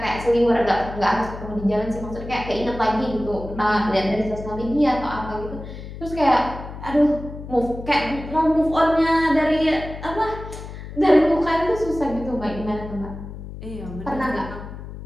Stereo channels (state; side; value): noise; left; hum, 11 dB below the sound